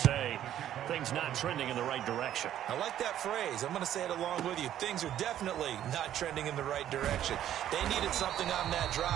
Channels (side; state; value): left; quieter; 11.4 dB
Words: say things not trending in the right direction. I like that phrase. I'm going to say it along with you. Things are definitely not trending in the right direction. They needed something on that